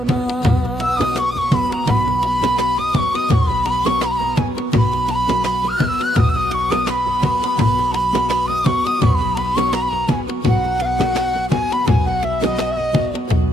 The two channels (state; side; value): normal; both; correlation 0.77